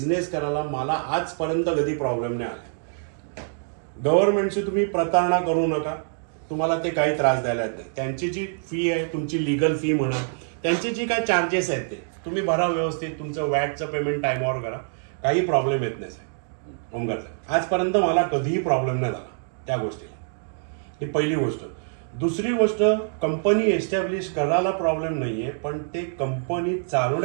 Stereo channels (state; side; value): silent; left; digital silence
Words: करायला मला आजपर्यंत कधी प्रॉब्लेम नाही आला. गव्हर्नमेंटची तुम्ही प्रतारणा करू नका, तुम्हाला ते काही त्रास द्यायला नाही. त्यांची जी फी आहे, तुमची लिगल फी म्हणा त्यांची जी काय चार्जेस आहेत ते तुम्ही भरा व्यवस्थित, तुमचं वॅटचं पेमेंट टाइमवर करा, काही प्रॉब्लेम येत नाही साहेब. ओमकार साहेब, आजपर्यंत मला कधीही प्रॉब्लेम नाही झाला त्या गोष्टीला. ही पहिली गोष्ट. दुसरी गोष्ट, कंपनी एस्टॅब्लिश करायला प्रॉब्लेम नाहीये, पण ते कंपनी